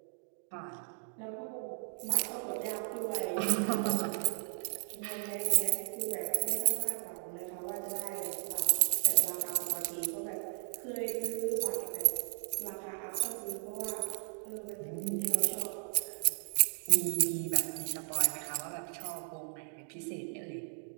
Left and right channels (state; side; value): silent; left; digital silence